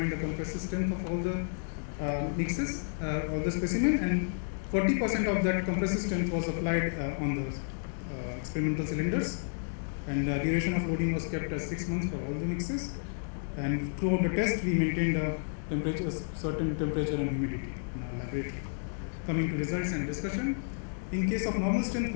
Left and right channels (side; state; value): right; silent; digital silence